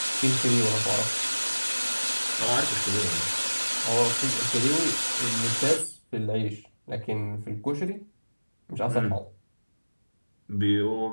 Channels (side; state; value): both; inverted; correlation -1.00